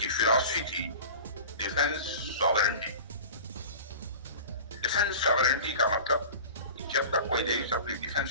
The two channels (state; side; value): inverted; both; correlation -0.37